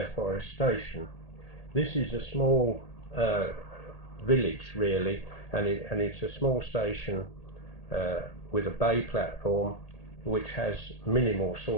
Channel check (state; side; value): late; right; 1.8 ms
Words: Forest Station. This is a small village, really, and it's a small station with a bay platform which has minimal